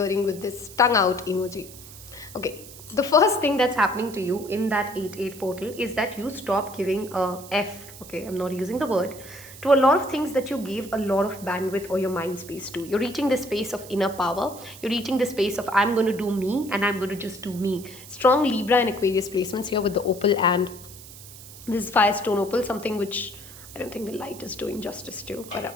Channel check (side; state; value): right; noise; hiss, 17 dB below the sound